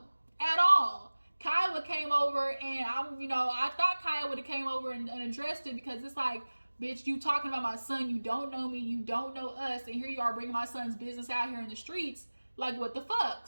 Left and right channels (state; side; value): inverted; both; correlation -1.00